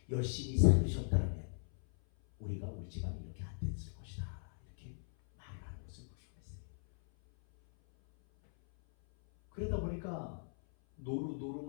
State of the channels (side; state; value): right; silent; 52 dB below the other